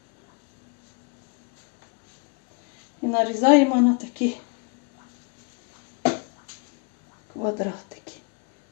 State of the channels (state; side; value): quieter; right; 34.6 dB